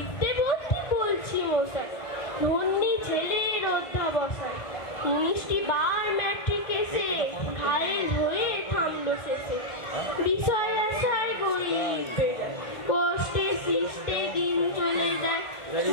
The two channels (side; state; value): right; late; 1.5 ms